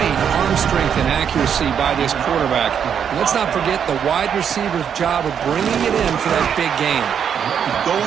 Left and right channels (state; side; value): quieter; left; 8.0 dB